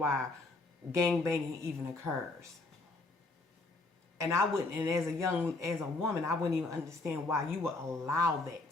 gangbanging even occurs. And I wouldn't, and as a woman, I wouldn't even understand why you would allow that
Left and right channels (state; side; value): quieter; right; 3.2 dB